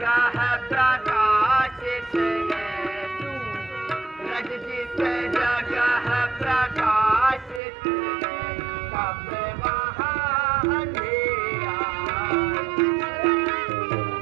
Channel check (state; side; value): drops out; left; at 7.6 s